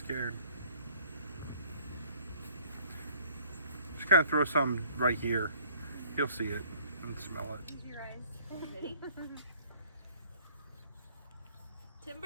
Just kind of throw some right here. He'll see it and smell it. Use your eyes. Ready?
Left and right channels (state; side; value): inverted; both; correlation -0.56